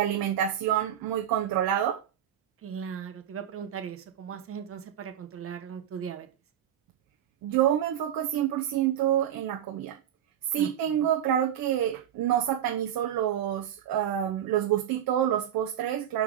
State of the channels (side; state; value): left; quieter; 10.4 dB